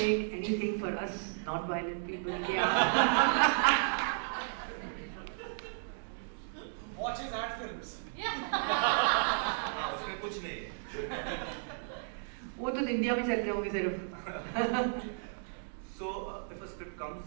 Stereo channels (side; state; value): left; silent; digital silence